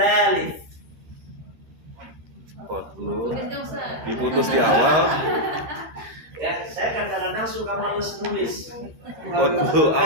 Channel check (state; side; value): late; left; 13 ms